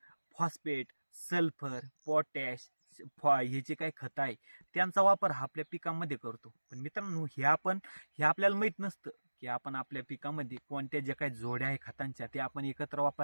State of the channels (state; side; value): inverted; both; correlation -1.00